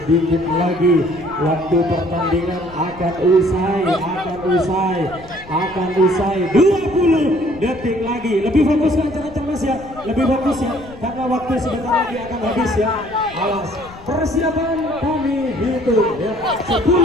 lagi waktu pertandingan akan usai, 20 detik lagi. Lebih fokus ke antar-antar mas ya, lebih fokus ya, karena waktu sebentar lagi akan habis ya. Awas, persiapan kami hitung ya. 10,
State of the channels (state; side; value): noise; left; rumble, 20 dB below the sound